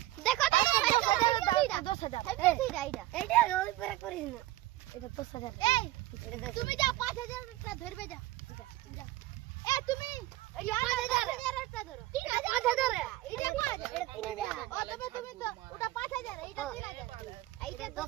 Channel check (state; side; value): quieter; left; 16.7 dB